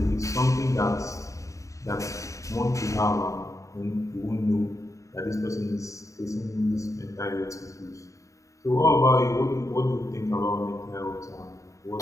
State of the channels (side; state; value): right; late; 0.16 ms